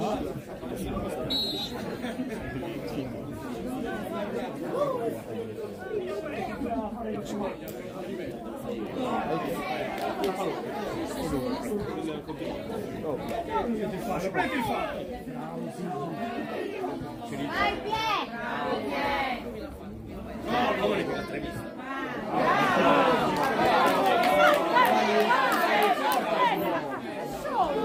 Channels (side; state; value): both; identical; correlation 1.00